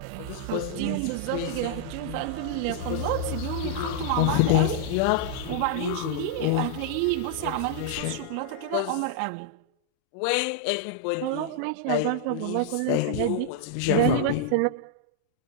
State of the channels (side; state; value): both; different; correlation -0.01